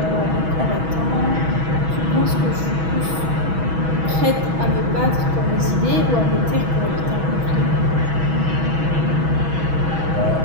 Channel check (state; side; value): late; left; 6.2 ms